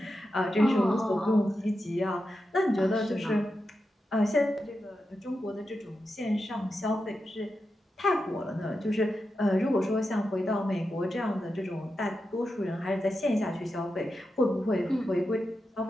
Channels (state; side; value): normal; both; correlation 0.89